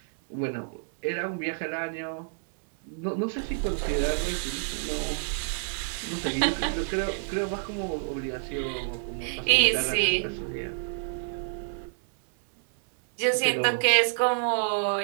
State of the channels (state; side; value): silent; left; 59 dB below the other